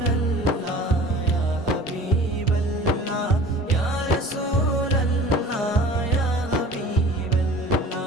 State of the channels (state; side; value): normal; both; correlation 0.44